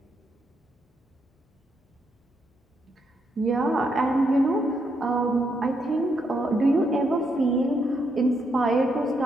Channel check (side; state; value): both; normal; correlation 0.78